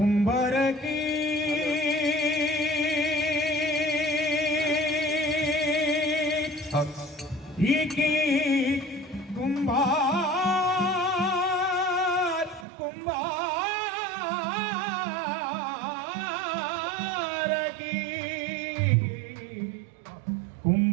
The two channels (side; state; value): left; drops out; at 12.7 s